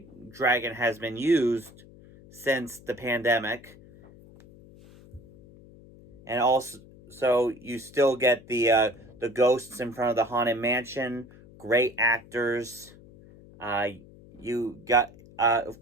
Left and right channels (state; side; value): noise; left; hum, 22 dB below the sound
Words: dragon has been used since the pandemic. And also, so you still get the ghosts in front of the Haunted Mansion, great actors. You got, of